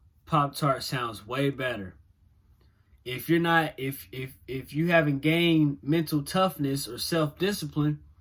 Pop-Tart sounds way better. If you're not, if you haven't gained mental toughness or self-discipline,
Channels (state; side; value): identical; both; correlation 1.00